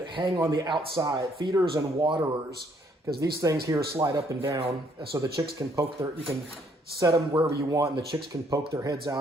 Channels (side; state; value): both; normal; correlation 0.67